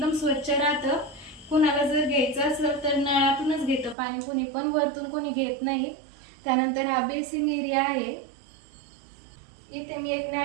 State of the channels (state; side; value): drops out; left; at 4.0 s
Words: स्वच्छ राहतं। कुणाला जर घ्यायचं असेल तर नळातूनच घेतं पाणी कुणी पण, वरतून कोणी घेत नाही। त्यानंतर हा बेसिंग एरिया आहे। इथे मी एक